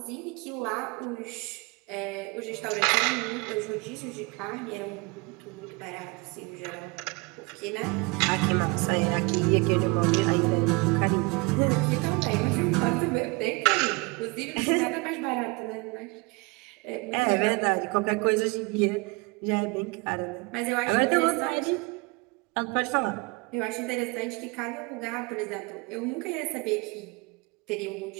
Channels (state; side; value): quieter; left; 27.1 dB